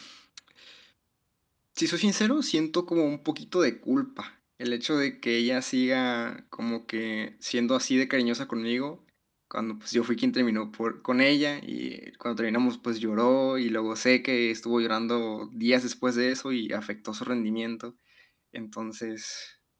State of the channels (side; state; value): both; identical; correlation 1.00